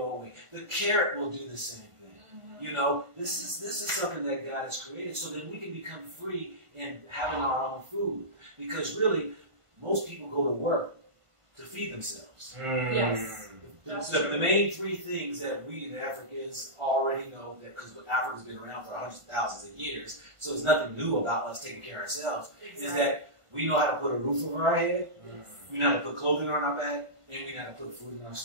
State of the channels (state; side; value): late; left; 1.5 ms